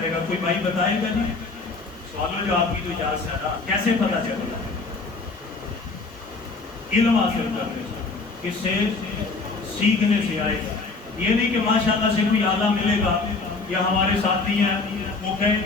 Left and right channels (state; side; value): quieter; right; 3.9 dB